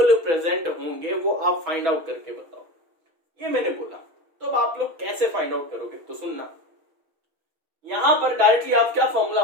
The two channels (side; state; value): left; late; 6.1 ms